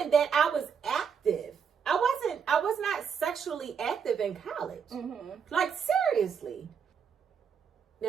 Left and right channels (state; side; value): quieter; left; 6.9 dB